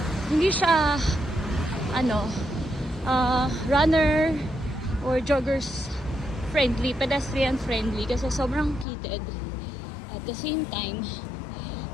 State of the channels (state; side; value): drops out; right; at 8.8 s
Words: hindi siya, runner or joggers friendly, pedestrian friendly kasi sobrang heated. At the same time,